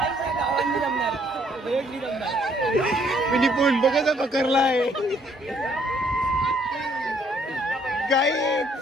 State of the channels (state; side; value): normal; both; correlation 0.65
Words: गावांनी जमणार. वेगळी जमणार. मी फोन बघायचा पकडलाय काय.